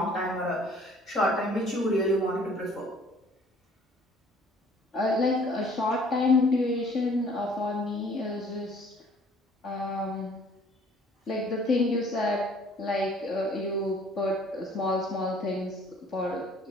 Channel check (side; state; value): both; normal; correlation 0.56